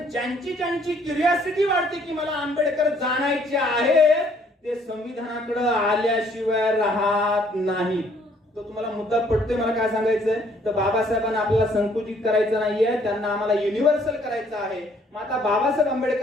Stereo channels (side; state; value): both; normal; correlation 0.63